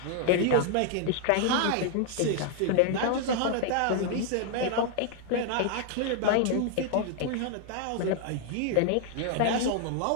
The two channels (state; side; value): different; both; correlation 0.00